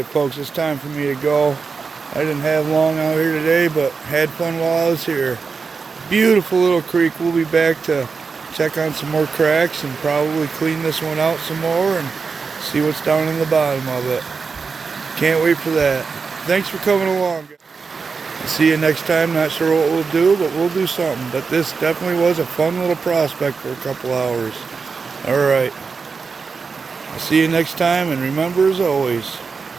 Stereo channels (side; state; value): left; quieter; 5.0 dB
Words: folks, it's time for me to go. I didn't have long out here today, but had fun while I was here. Beautiful little creek. We'll be back to check on some more cracks and probably clean this one out some more and see what's down in the bottom of it. Can't wait for that. Thanks for coming along. See you next time. Not sure what we'll do, but we'll do something. But this definitely was a fun little prospect for a couple hours. Alright. I'll see you next time, and remember, as always,